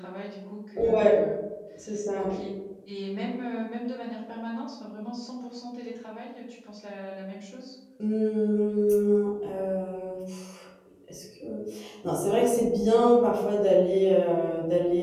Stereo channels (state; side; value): identical; both; correlation 1.00